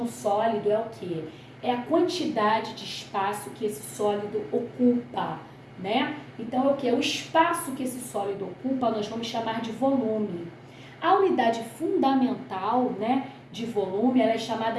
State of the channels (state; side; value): identical; both; correlation 1.00